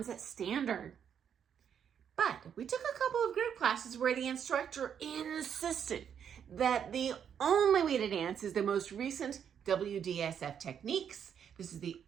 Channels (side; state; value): left; quieter; 8.2 dB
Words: standard. But we took a couple of group classes where the instructor insisted that the only way to dance is the most recent WDSF techniques. This is the